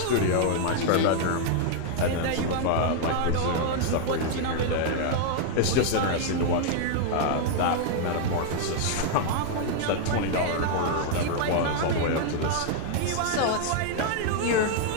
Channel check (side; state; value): both; different; correlation 0.00